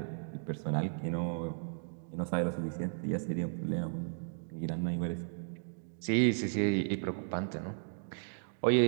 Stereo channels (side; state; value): left; silent; digital silence